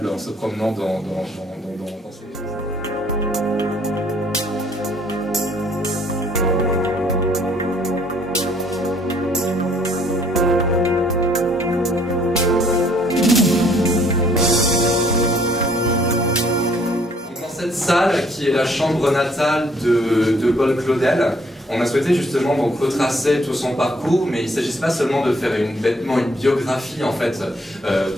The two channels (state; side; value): normal; both; correlation 0.62